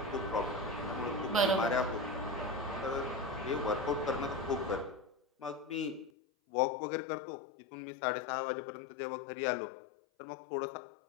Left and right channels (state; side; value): drops out; right; at 6.1 s